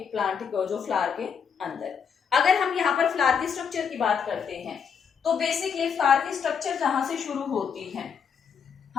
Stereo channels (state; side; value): quieter; right; 6.9 dB